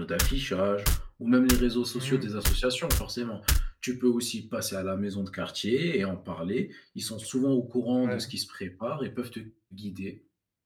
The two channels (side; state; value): both; identical; correlation 1.00